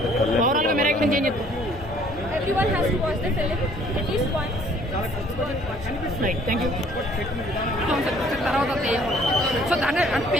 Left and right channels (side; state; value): both; normal; correlation 0.58